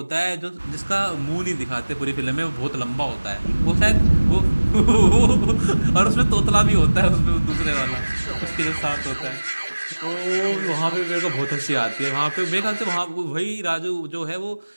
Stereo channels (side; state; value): both; inverted; correlation -1.00